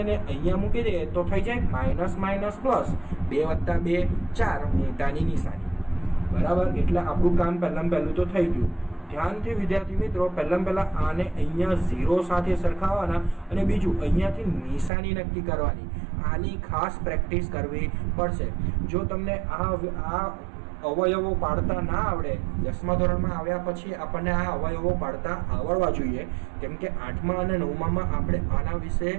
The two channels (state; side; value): drops out; left; at 14.9 s